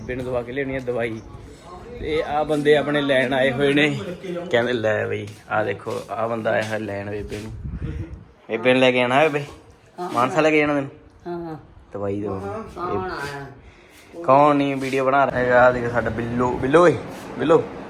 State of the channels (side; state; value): both; identical; correlation 1.00